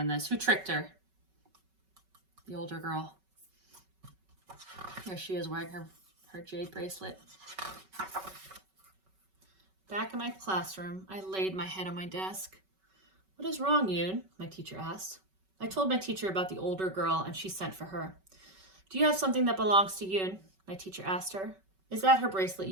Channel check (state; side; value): late; left; 5.3 ms